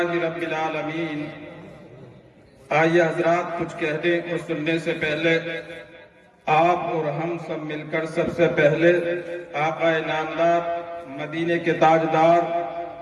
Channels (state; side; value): identical; both; correlation 1.00